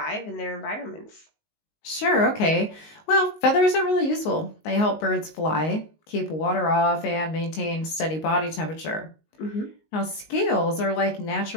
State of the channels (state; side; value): late; right; 19 ms